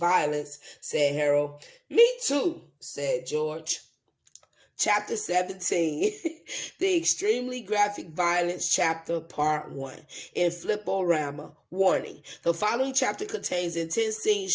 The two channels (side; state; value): both; identical; correlation 1.00